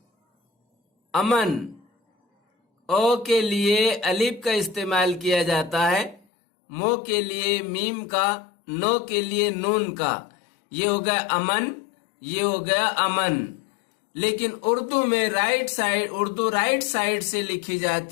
अमन, ओ के लिए अलिफ का इस्तेमाल किया जाता है, मो के लिए मीम का, नो के लिए नून का। ये हो गया अमन, ये हो गया अमन। लेकिन उर्दू में उर्दू राइट साइड से लिखी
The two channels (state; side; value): drops out; right; at 6.2 s